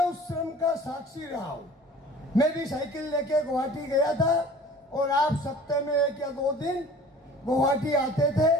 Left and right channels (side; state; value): both; normal; correlation 0.46